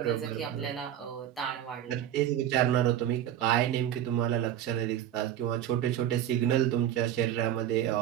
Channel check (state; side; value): quieter; left; 11.1 dB